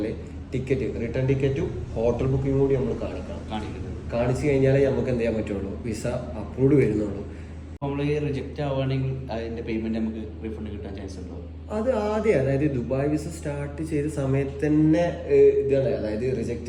ടിക്കറ്റ് റിട്ടേൺ ടിക്കറ്റും ഹോട്ടൽ ബുക്കിംഗ് കൂടി നമ്മൾ കാണിച്ചു കഴിഞ്ഞാലേ നമുക്ക് എന്ത് ചെയ്യാൻ പറ്റുള്ളൂ, വിസ അപ്രൂവ്ഡ് വരുന്നുള്ളൂ. നമ്മൾ റിജക്റ്റ് ആവുകയാണെങ്കിൽ അതിന്റെ പേയ്മെന്റ് നമുക്ക് റീഫണ്ട് കിട്ടാൻ ചാൻസ് ഉണ്ടോ? അത് ആദ്യം അതായത് ദുബായ് വിസ സ്റ്റാർട്ട് ചെയ്ത സമയത്ത് തന്നെ ഇതാണ്, അതായത്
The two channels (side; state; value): both; identical; correlation 1.00